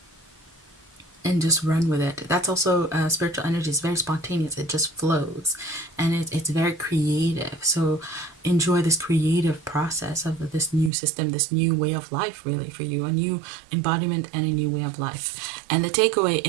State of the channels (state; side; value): drops out; left; at 10.9 s